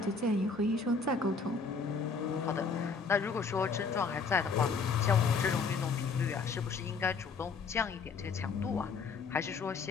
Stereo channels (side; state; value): right; quieter; 4.9 dB